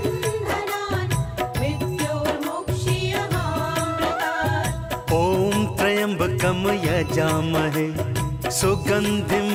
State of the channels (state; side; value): identical; both; correlation 1.00